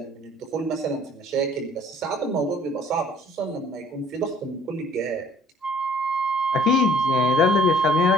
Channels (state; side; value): normal; both; correlation 0.55